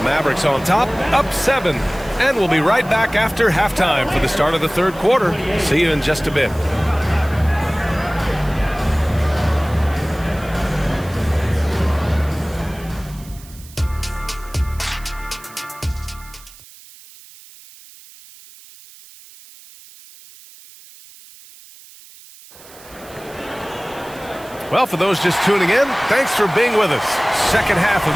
Mavericks on top, up 7. And we'll be right back after halftime for the start of the third quarter. See you in just a bit. Well, for those just tuning in, thanks for being with us. Second half of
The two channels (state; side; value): noise; right; hiss, 21 dB below the sound